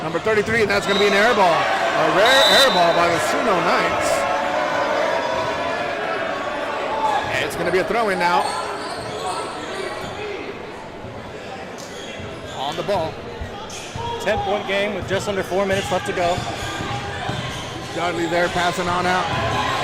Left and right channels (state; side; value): identical; both; correlation 1.00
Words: number 33, and that's going to be an air ball. A rare air ball by the SUNO Knights. And it's going to be a throw-in now. On the ball. 10-point game with just under 4 minutes left to go. Dudley there passing on out.